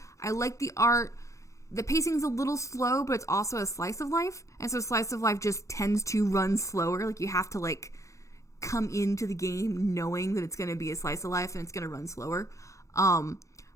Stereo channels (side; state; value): right; late; 0.15 ms